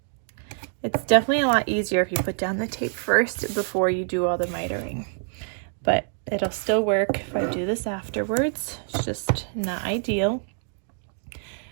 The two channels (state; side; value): silent; left; digital silence